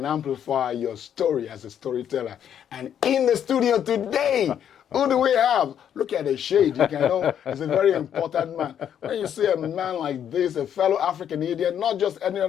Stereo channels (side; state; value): right; quieter; 9.3 dB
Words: amplify your story as a storyteller. And in the studio today, who do we have? Look at the shade. You can know he's a very important man. When you see a man like this, a fellow African Indian, not just any